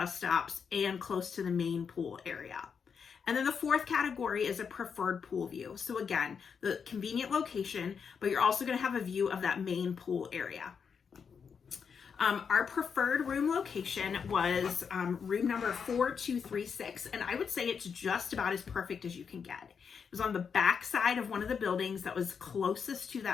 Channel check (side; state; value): right; quieter; 6.4 dB